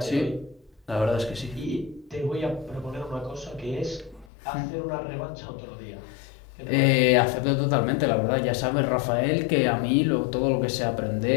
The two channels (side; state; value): right; drops out; at 4.2 s